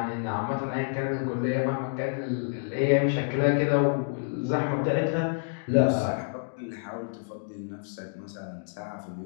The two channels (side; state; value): right; silent; digital silence